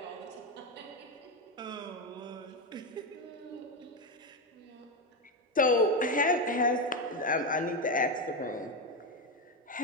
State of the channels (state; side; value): normal; both; correlation 0.11